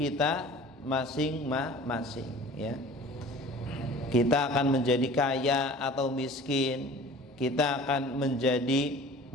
masing-masing, ya. Kita akan menjadi kaya atau miskin, kita akan menjadi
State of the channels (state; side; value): normal; both; correlation 0.44